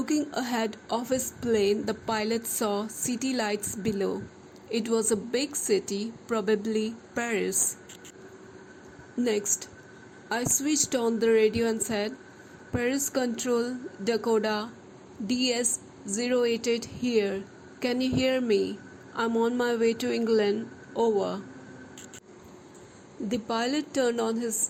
ahead of his plane, the pilot saw city lights below. It was a big city, probably Paris. Next, I switched on the radio and said, Paris Control, Dakota, DS-088 here. Can you hear me? I'm on my way to England. Over. The pilot turned on his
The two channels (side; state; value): both; identical; correlation 1.00